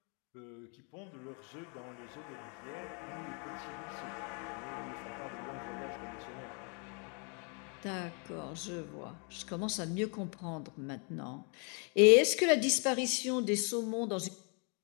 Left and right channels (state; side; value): quieter; right; 37.0 dB